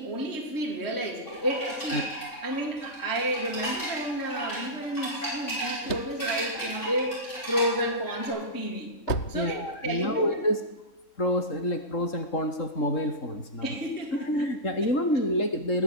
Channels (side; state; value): right; late; 3.6 ms